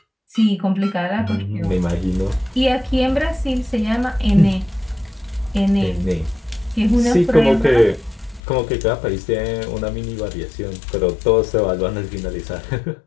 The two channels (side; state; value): right; drops out; at 8.4 s